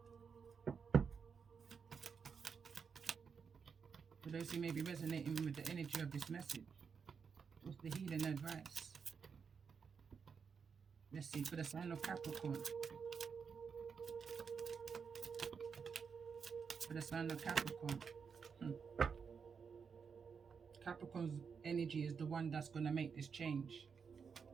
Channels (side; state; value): left; quieter; 6.1 dB